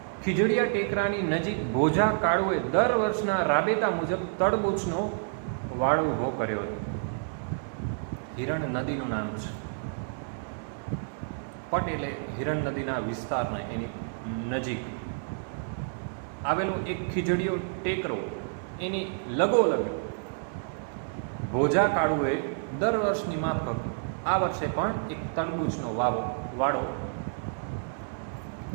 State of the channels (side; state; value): left; silent; digital silence